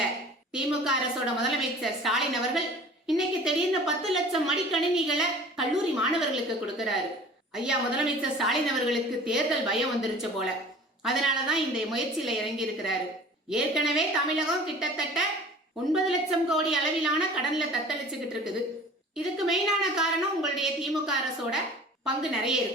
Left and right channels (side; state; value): both; normal; correlation 0.44